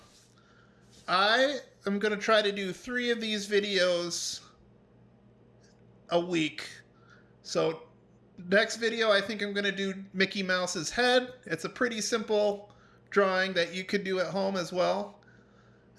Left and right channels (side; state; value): both; identical; correlation 1.00